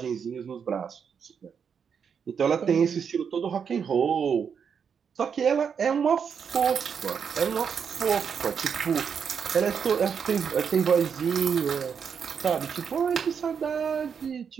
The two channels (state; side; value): quieter; left; 6.9 dB